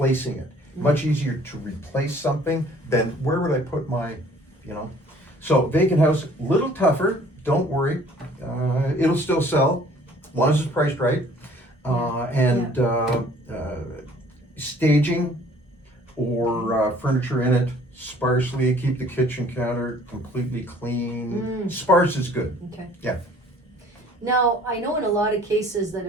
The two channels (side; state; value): both; normal; correlation 0.54